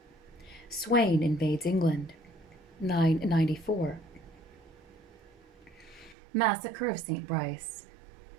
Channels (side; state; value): left; drops out; at 6.2 s